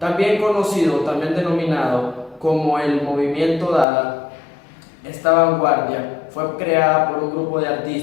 conocido, también denominado como el movimiento Dada, esta vanguardia fue creada por un grupo de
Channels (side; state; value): right; drops out; at 3.9 s